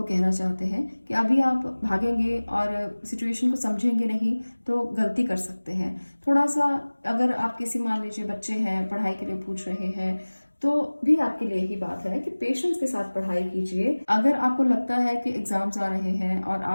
कहना चाहते हैं कि अभी आप भागेंगे और सिचुएशन को समझेंगे नहीं तो गलती कर सकते हैं। थोड़ा सा अगर आप किसी, मान लीजिए बच्चे हैं, पढ़ाई के लिए पूछ रहे हैं, तो भी आपके लिए ही बात है कि पेशेंस के साथ पढ़ाई कीजिए। अगर आपको लगता है कि एग्जाम्स आ रहे हैं और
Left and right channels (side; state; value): both; inverted; correlation -1.00